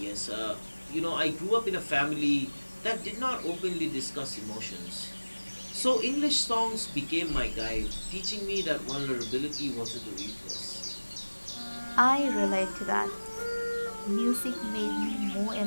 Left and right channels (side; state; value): both; inverted; correlation -1.00